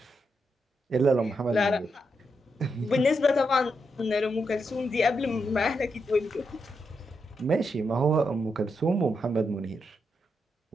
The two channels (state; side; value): normal; both; correlation 0.83